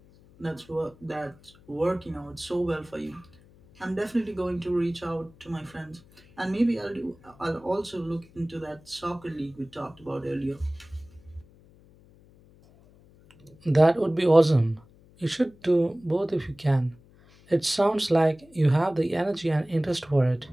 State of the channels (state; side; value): noise; left; hum, 27 dB below the sound